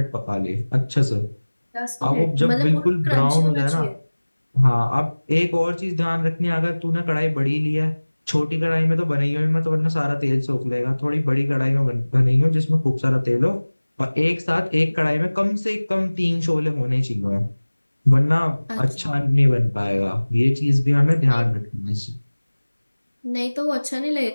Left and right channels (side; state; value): both; inverted; correlation -1.00